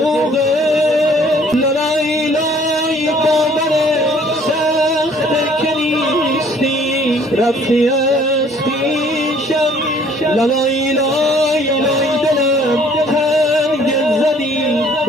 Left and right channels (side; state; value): both; normal; correlation 0.58